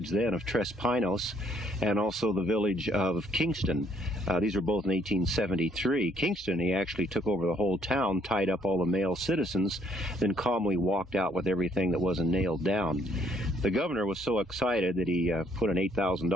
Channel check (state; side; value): normal; both; correlation 0.66